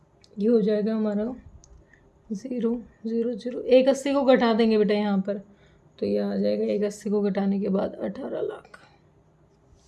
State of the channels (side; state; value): both; identical; correlation 1.00